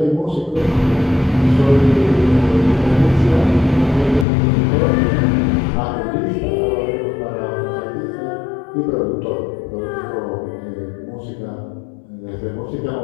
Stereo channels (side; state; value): right; drops out; at 4.2 s